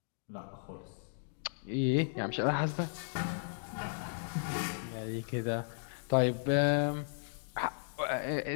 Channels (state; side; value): silent; right; digital silence